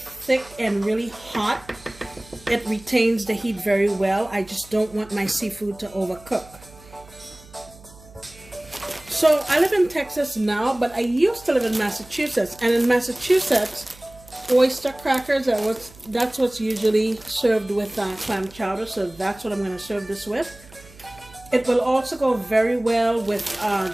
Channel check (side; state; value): right; noise; hum, 22 dB below the sound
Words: and really hot, it retains the heat very well. I just don't want my seafood to overcook. So I live in Texas now, but I used to live in Massachusetts, and in Massachusetts, oyster crackers that's what's usually served with clam chowder, so that's what I'm going to serve this with. It will also go very well with